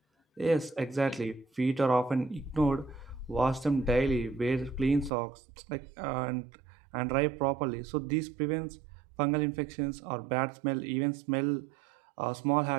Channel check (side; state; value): left; drops out; at 5.1 s